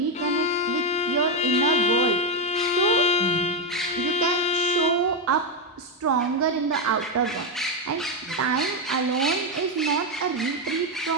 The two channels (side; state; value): both; normal; correlation 0.06